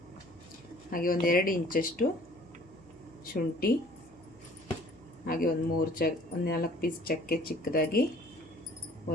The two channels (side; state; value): left; noise; hum, 29 dB below the sound